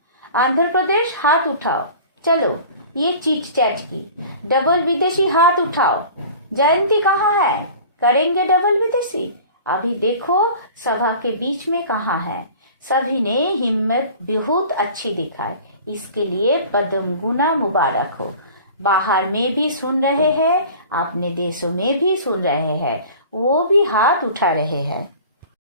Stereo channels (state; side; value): inverted; both; correlation -0.42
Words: आंध्र प्रदेश हाथ उठाओ। चलो, ये चीट चैट की। डबल विदेशी हाथ उठाओ। जयंती कहाँ है? करेंगे डबल विदेशी? अभी देखो सभा के बीच में कहाँ है। सभी ने हिम्मत बहुत अच्छी दिखाई, इसके लिए पद्म गुना मुबारक हो। बाहर में भी सुन रहे हैं, अपने देशों में भी सुन रहे हैं, वो भी हाथ उठा रहे हैं।